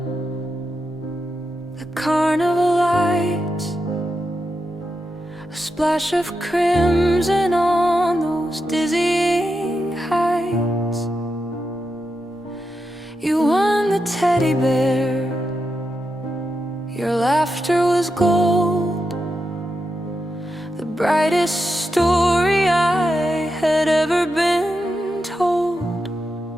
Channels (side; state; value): both; normal; correlation 0.87